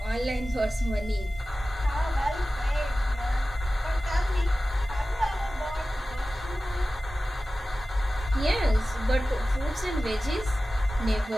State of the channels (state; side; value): normal; both; correlation 0.96